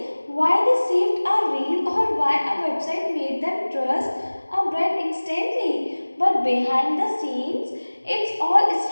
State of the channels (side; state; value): both; inverted; correlation -1.00